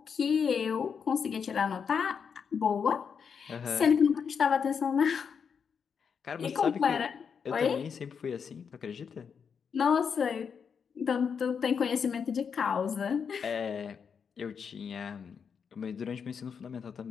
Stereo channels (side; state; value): right; quieter; 6.5 dB